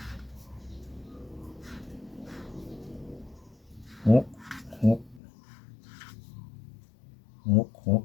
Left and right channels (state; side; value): drops out; right; at 5.2 s